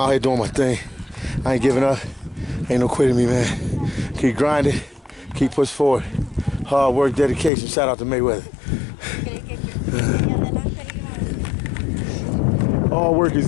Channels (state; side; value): drops out; right; at 7.5 s